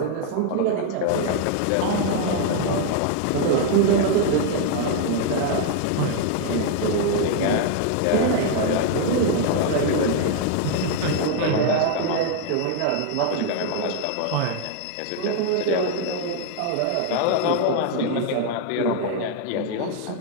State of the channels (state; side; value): different; both; correlation 0.00